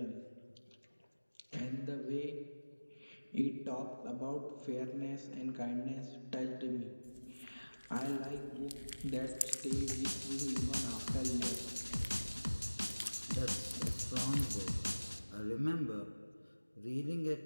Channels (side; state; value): both; inverted; correlation -1.00